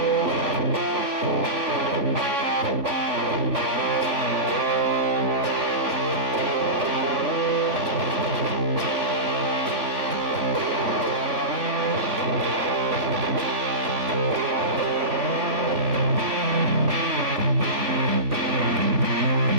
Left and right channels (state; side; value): late; left; 3.5 ms